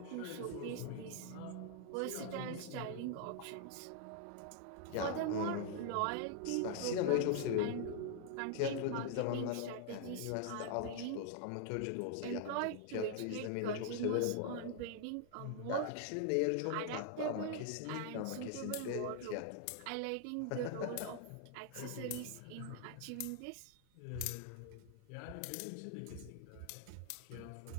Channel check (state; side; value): different; both; correlation 0.00